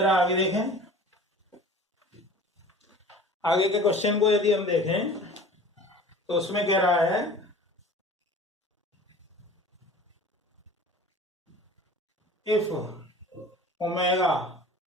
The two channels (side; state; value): both; normal; correlation 0.43